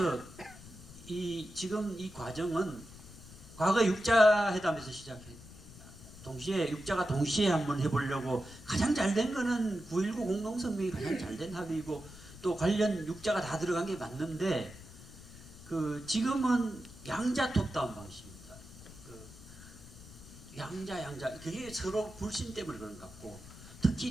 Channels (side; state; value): left; noise; rumble, 17 dB below the sound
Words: 지금 이 과정은 과거 육자 회담에서 시작해. 동시에 육자가 동시에 한번 해보려고 가장 잘된 거는 9.19 공동성명이 가장 잘된 합의고 또 관련 육자가 다 들어간 게 맞는데 지금은 양자 톱다운 방식입니다. 양자 그게 서로 불신 때문에 그런 것 같고,